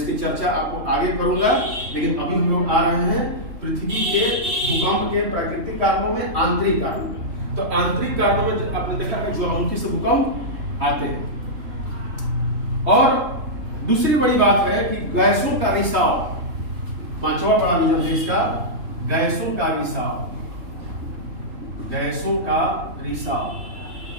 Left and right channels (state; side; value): late; left; 3.5 ms